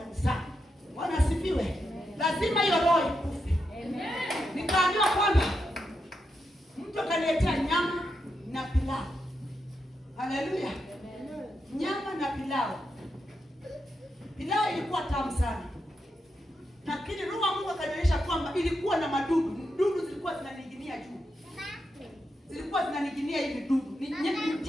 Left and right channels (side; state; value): both; normal; correlation 0.85